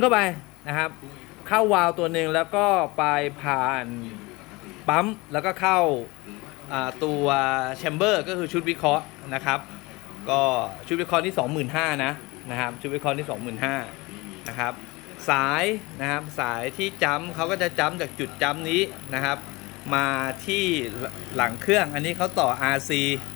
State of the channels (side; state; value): right; quieter; 23.5 dB